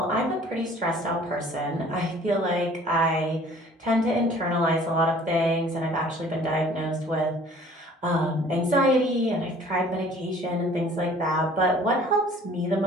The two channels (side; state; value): both; normal; correlation 0.52